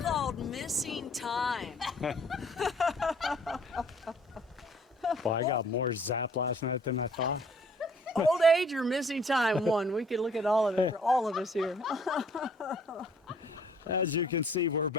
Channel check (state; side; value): normal; both; correlation 0.58